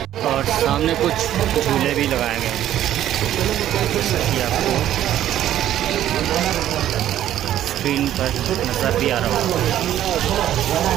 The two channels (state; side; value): quieter; left; 12.0 dB